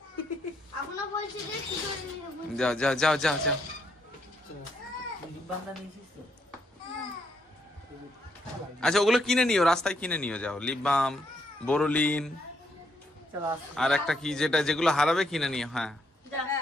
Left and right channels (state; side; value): normal; both; correlation 0.75